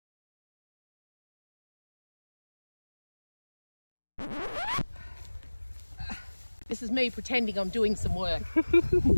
This is me pretending I'm doing some work.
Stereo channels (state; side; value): inverted; both; correlation -1.00